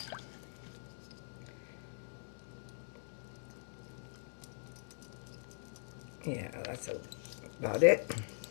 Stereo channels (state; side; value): silent; right; digital silence